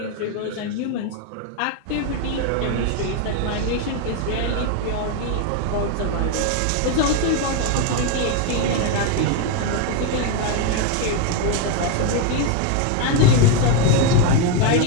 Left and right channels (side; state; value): both; different; correlation 0.01